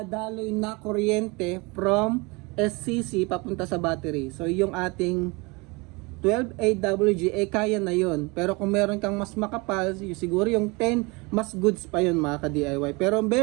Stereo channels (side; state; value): left; quieter; 26.8 dB